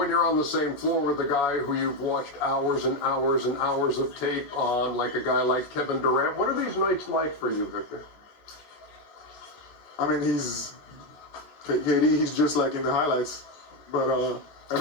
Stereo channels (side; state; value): right; late; 14 ms